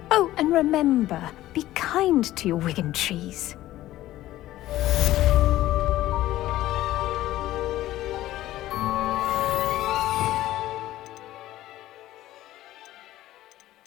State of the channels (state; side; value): quieter; right; 15.0 dB